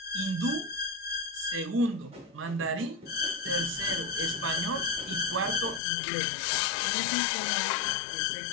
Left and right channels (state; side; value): drops out; right; at 5.8 s